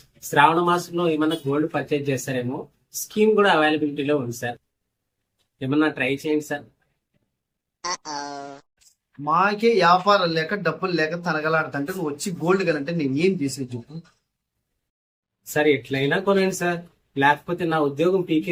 శ్రావణ మాసంలో ఏమన్నా గోల్డ్ పర్చేజ్ చేస్తారేమో, స్కీమ్ కూడా అవైలబిలిటీలో ఉంది సార్. ఏమన్నా ట్రై చేయండి సార్. మాకే వ్యాపారం లేక డబ్బులు లేక తనగలాడుతుంటే నువ్వు వచ్చి గోల్డ్ కనంటే నేను ఏం చేసేది చెప్పు. సార్, ఎట్లయినా కొనండి సార్, లేకపోతే నా ఉద్యోగం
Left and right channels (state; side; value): identical; both; correlation 1.00